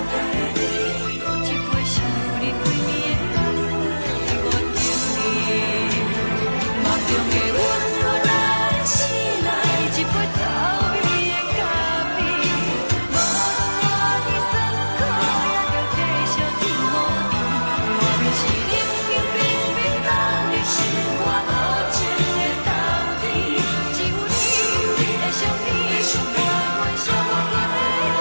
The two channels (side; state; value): both; inverted; correlation -1.00